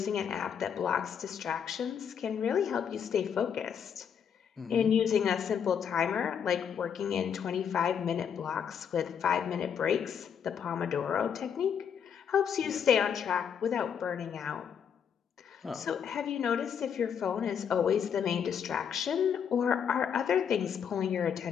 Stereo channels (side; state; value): right; quieter; 7.7 dB